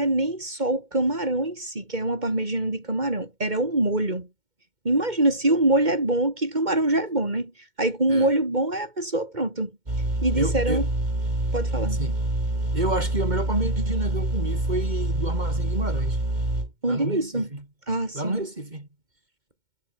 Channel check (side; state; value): left; late; 2.1 ms